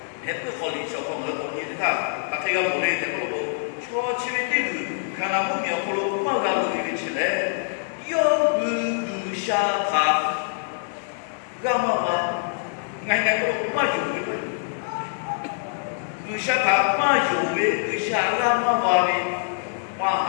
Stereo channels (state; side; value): silent; right; digital silence